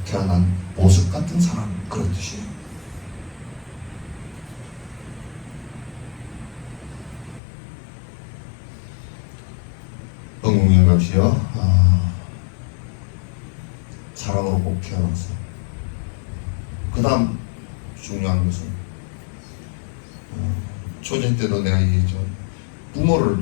태어난 보석 같은 사람, 그런 뜻이에요. 응웅영갑시여, 사람으로 꼭 태어나서 그 다음 중요한 것은 초전 때도 내가 얘기했죠.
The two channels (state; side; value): drops out; right; at 7.4 s